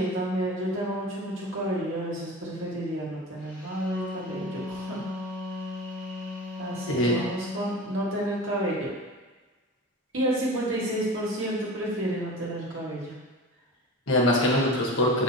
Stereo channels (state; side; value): normal; both; correlation 0.33